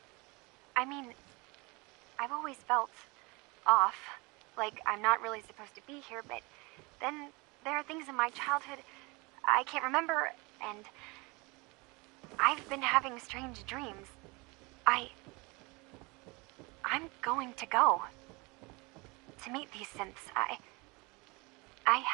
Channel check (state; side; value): quieter; left; 26.6 dB